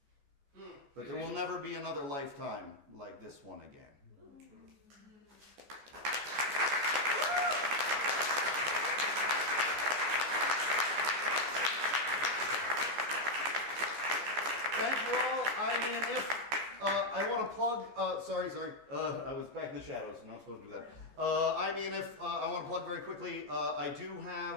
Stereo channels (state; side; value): late; left; 14 ms